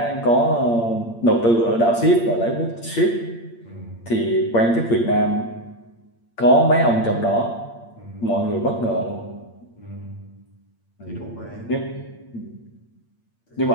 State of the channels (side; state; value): right; late; 8.7 ms